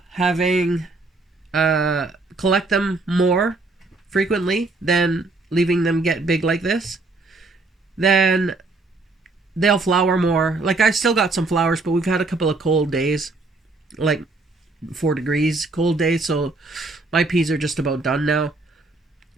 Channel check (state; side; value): quieter; left; 3.4 dB